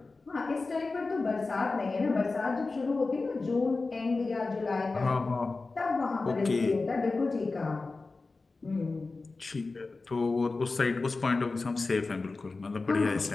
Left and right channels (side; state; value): right; quieter; 3.7 dB